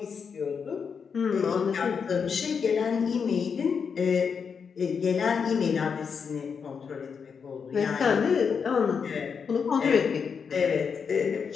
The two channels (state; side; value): quieter; right; 6.2 dB